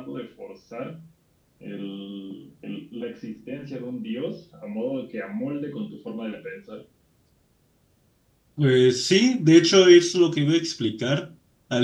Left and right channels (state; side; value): identical; both; correlation 1.00